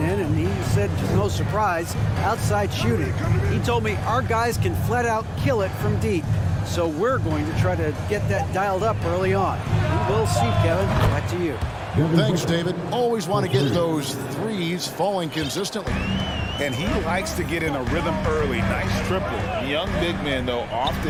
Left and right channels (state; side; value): identical; both; correlation 1.00